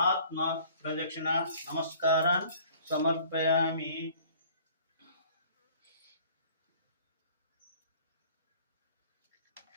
प्रदक्षिण नमस्कारान् समर्पयामि।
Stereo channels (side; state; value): both; inverted; correlation -0.53